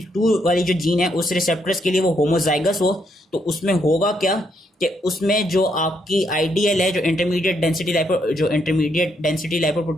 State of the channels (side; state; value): both; normal; correlation 0.75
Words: वाली जो जीन है उस रिसेप्टर्स के लिए वो होमोजाइगस हो तो उसमें होगा क्या कि उसमें जो आपकी आइडियल है जो इंटरमीडिएट डेंसिटी